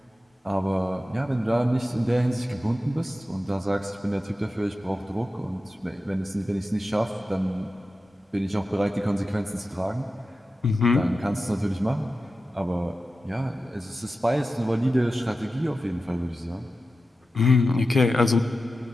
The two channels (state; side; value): normal; both; correlation 0.92